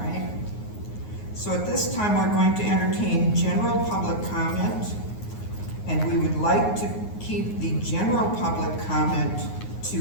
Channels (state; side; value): late; right; 9.5 ms